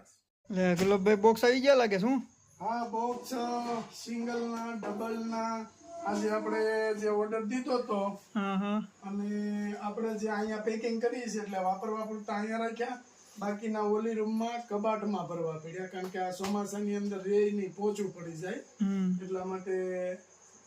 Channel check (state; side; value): identical; both; correlation 1.00